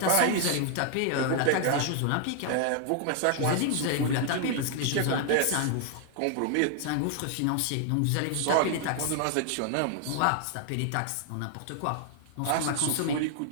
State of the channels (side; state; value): both; different; correlation 0.00